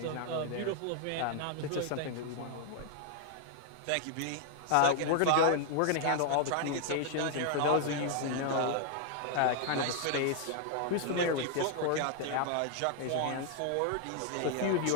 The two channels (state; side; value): different; both; correlation 0.00